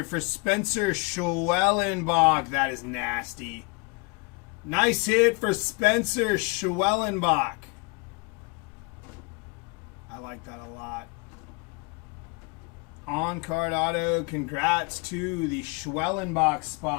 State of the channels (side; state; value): right; quieter; 29.4 dB